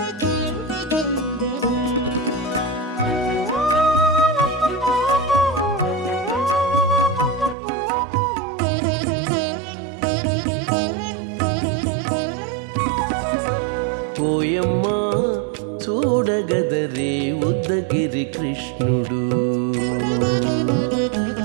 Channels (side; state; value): left; drops out; at 7.6 s